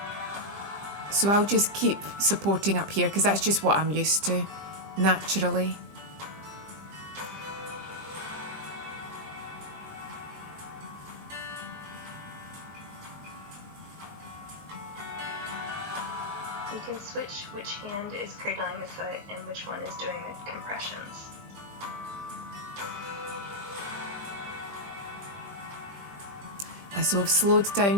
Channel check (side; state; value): left; late; 20 ms